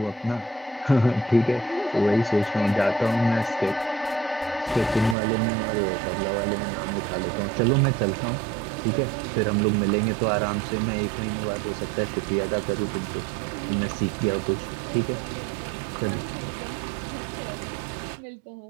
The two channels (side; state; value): left; drops out; at 5.2 s